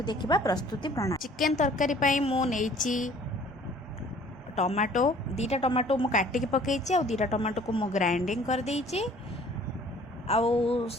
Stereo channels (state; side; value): normal; both; correlation 0.54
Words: देखा प्रस्तुति प्रणाली। चिकेन तरकारी पई मु नेइची टमाटो दीटा टमाटो मु काटिकी पकईची आ दीटा टमाटो को मु ग्राइंडिंग कर देइची आउ